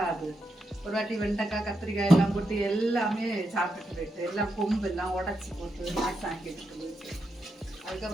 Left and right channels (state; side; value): normal; both; correlation 0.84